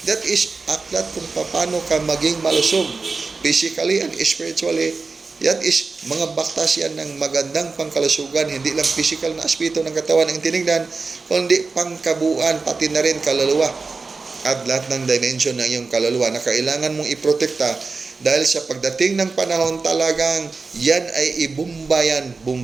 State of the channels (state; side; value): quieter; left; 4.2 dB